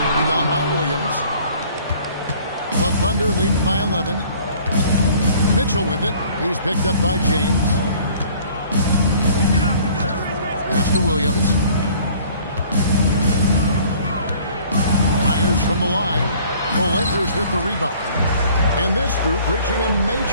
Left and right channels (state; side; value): inverted; both; correlation -0.53